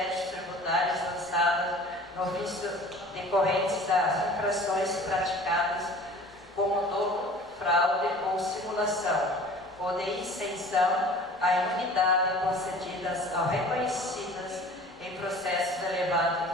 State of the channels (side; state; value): both; normal; correlation 0.45